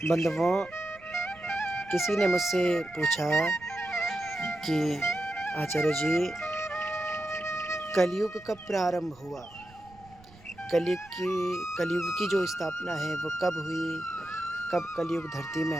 बंधुओं, किसी ने मुझसे पूछा कि आचार्य जी, कलयुग कब प्रारंभ हुआ? कलयुग की जो स्थापना है वो कब हुई? कब कलयुग धरती में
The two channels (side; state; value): right; noise; rumble, 24 dB below the sound